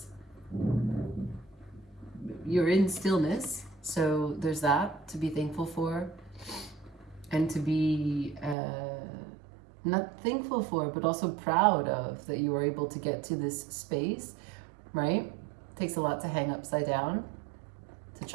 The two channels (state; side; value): drops out; left; at 8.6 s